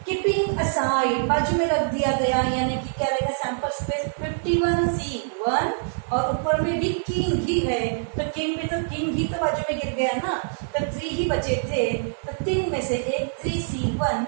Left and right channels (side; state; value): left; silent; digital silence